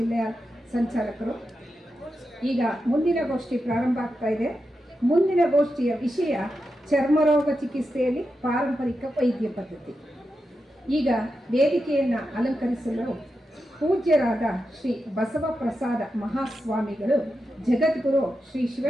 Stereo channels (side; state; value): both; normal; correlation 0.88